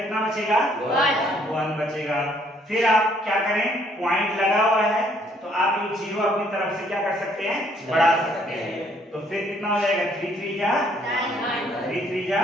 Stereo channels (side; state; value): both; normal; correlation 0.65